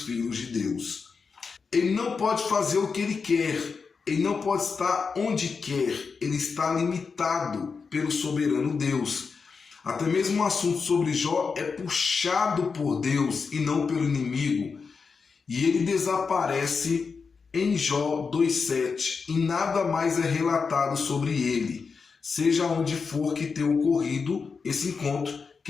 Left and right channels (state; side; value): quieter; right; 5.2 dB